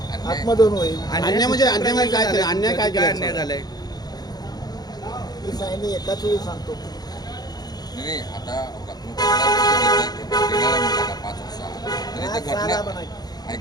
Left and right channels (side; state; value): right; late; 0.19 ms